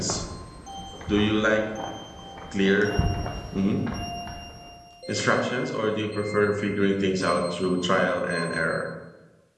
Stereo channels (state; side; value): identical; both; correlation 1.00